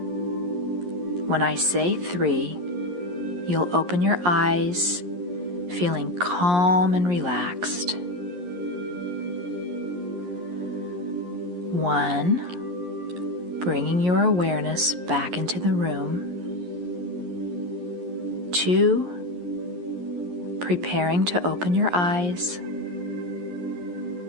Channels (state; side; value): late; left; 11 ms